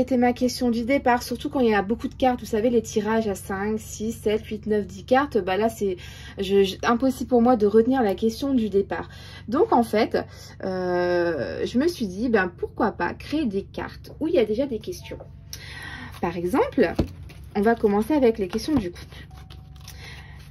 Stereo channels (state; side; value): identical; both; correlation 1.00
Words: ma question du départ, surtout quand il y a beaucoup de cartes. Vous savez, les tirages à 5, 6, 7, 8, 9, 10 cartes, bah là c'est impossible pour moi de retenir la question du départ. Donc en fait, je me suis dit, ben pourquoi pas créer des cartes où il y a déjà des questions. Par exemple, on va commencer avec les questions du couple.